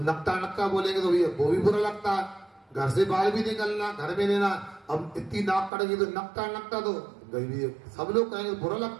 नक्का नक्का बोलेंगे तो भैया वो भी बुरा लगता है। घर से बाहर भी निकलना, घर में लेना, अब इतनी नाक कटेगी तो नक्का नक्का तो गई, सब लोग कहेंगे बुरा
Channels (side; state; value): left; drops out; at 5.7 s